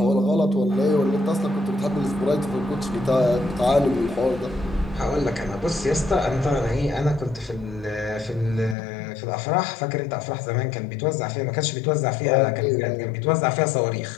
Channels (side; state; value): right; drops out; at 8.8 s